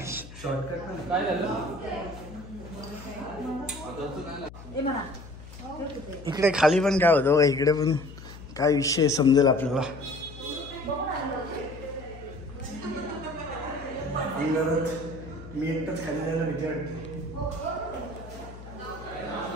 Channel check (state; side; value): noise; left; hum, 15 dB below the sound